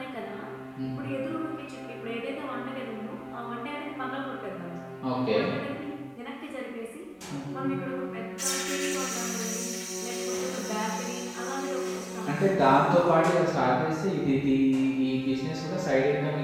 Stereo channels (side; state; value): both; identical; correlation 1.00